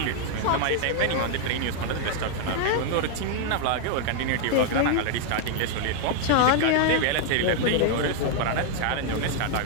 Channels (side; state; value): both; different; correlation 0.00